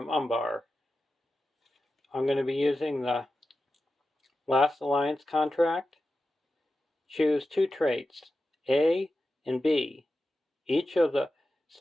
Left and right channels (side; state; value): both; normal; correlation 0.92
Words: Umbar. I'm going to be using the last alliance contract. Choose two traits, A and B. Each of